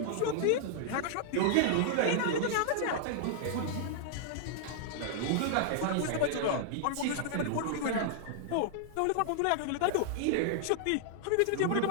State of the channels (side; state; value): both; different; correlation -0.01